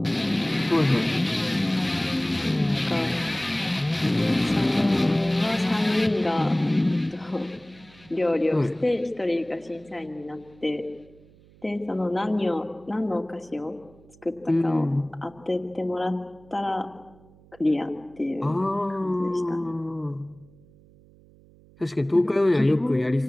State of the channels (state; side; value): noise; right; hum, 26 dB below the sound